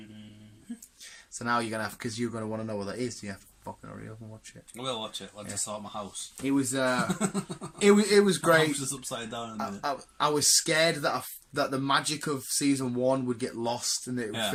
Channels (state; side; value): identical; both; correlation 1.00